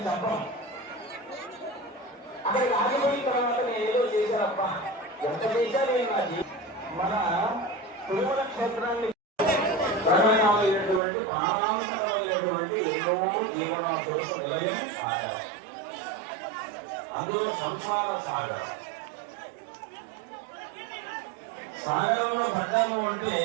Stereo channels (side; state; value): left; drops out; at 11.0 s